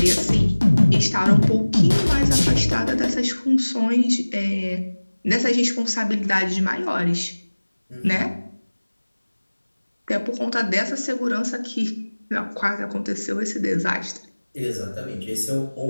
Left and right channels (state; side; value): inverted; both; correlation -1.00